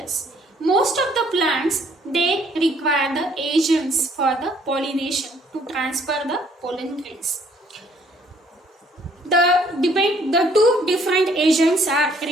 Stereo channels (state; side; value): normal; both; correlation 0.63